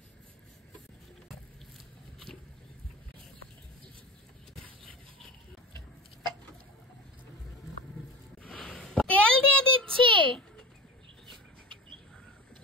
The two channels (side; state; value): both; normal; correlation 0.32